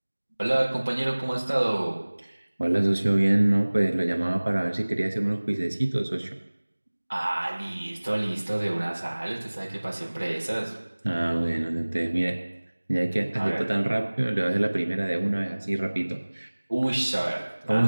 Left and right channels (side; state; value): both; inverted; correlation -1.00